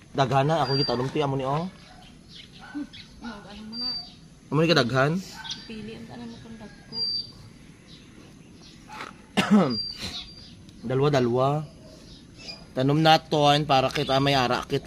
daghana ako gitanom ti amo ni oh. Amo ni kadaghan? Pili ang tanan mo kung Dalawa. Tanom naton para kita may ara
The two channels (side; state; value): both; identical; correlation 1.00